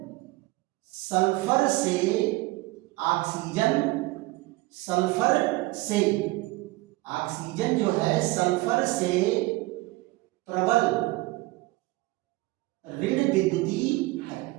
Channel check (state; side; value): quieter; left; 20.9 dB